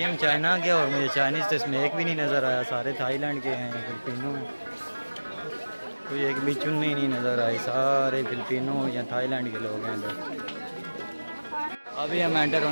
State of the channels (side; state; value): both; inverted; correlation -1.00